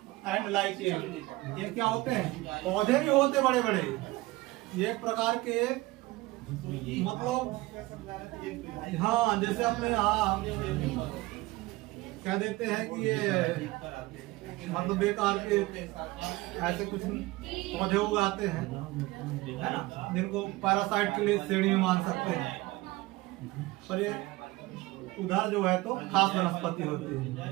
and lichen. ये क्या होते हैं, पौधे भी होते बड़े बड़े, ये एक प्रकार के मतलब, हाँ जैसे अपने यहाँ क्या देते हैं कि ये मतलब बेकार के ऐसे कुछ पौधे उगाते हैं, है ना, जिनको पैरासाइट के लिए श्रेणी में मान सकते हैं, पर ये उधर जो है तो खास वनस्पति होती है,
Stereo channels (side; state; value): left; quieter; 20.2 dB